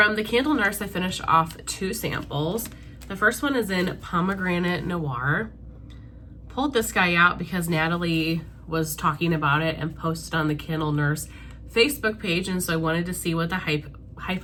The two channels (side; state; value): both; identical; correlation 1.00